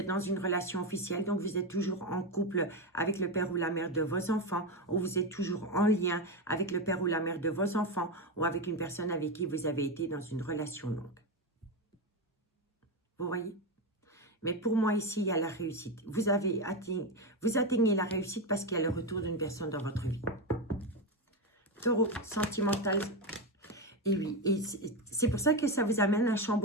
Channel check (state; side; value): normal; both; correlation 0.12